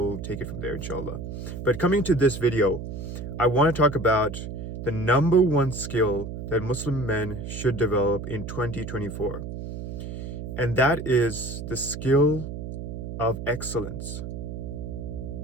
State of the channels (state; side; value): noise; right; hum, 7 dB below the sound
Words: take it from there, inshallah. But coming to this video, I want to talk about the number one skill that Muslim men should develop in 2024. And that is the skill of excellence.